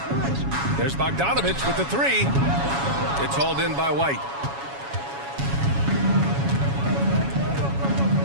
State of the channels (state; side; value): late; left; 7.2 ms